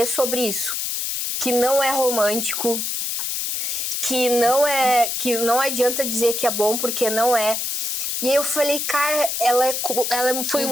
sobre isso. Que não é romântico, que não adianta dizer que é bom, porque não é. E aí eu falei, cara, ela foi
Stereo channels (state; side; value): noise; left; hiss, 1 dB below the sound